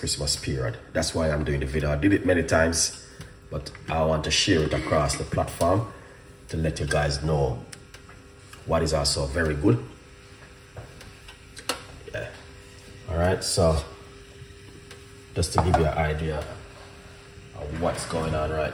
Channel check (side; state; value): both; identical; correlation 1.00